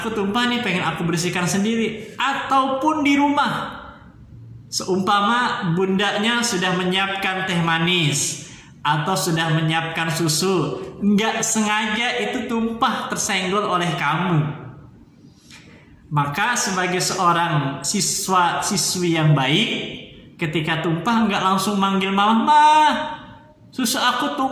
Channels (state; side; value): identical; both; correlation 1.00